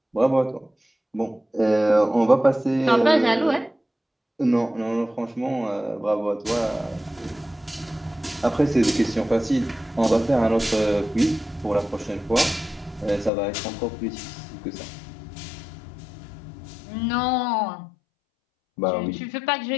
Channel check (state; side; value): drops out; right; at 13.3 s